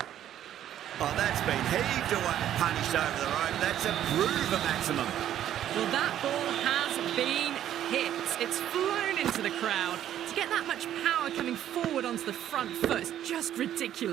Oh, that's been heaved away and punished over the rope. That's a Bruver maximum. Well, that ball has been hit. It's flown into the crowd. To get that much power coming forward onto the front foot is just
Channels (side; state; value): left; quieter; 11.2 dB